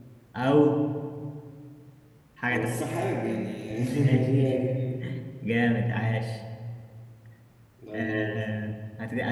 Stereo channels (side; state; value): both; identical; correlation 1.00